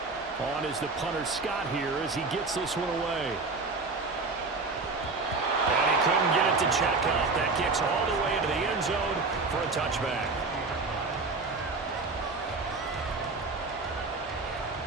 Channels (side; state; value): left; quieter; 3.8 dB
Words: On is the punter Scott here as he gets this one away. And he couldn't get it to check out. That kicks all the way into the end zone for a touchback.